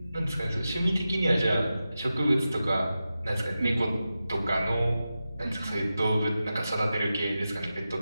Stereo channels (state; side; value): inverted; both; correlation -0.92